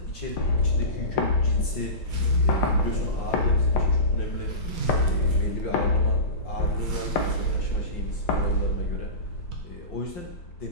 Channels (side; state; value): right; late; 5.7 ms